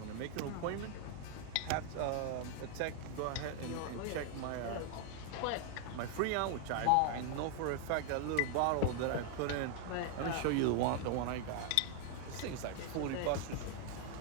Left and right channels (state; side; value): different; both; correlation 0.00